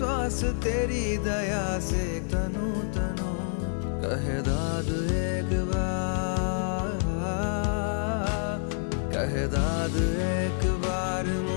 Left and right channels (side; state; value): right; silent; digital silence